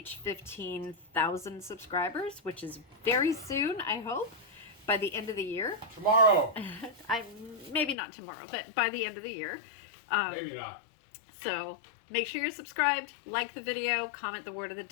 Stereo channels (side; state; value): right; drops out; at 8.0 s